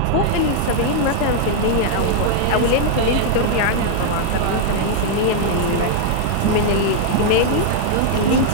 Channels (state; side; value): different; both; correlation -0.01